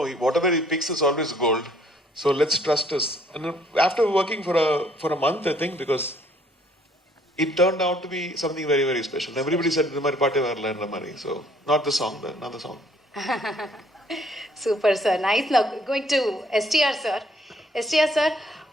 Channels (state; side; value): normal; both; correlation 0.62